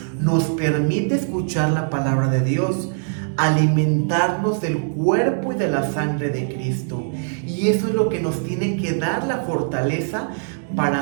nos permite escuchar la palabra de Dios, alimentarnos del cuerpo y de la sangre de Cristo. Y eso es lo que nos tiene que dar la fortaleza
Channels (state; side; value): silent; left; digital silence